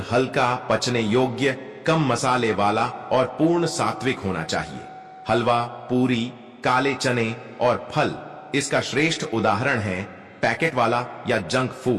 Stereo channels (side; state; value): both; identical; correlation 1.00